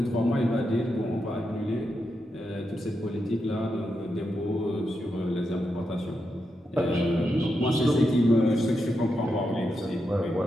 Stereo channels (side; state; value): both; normal; correlation 0.86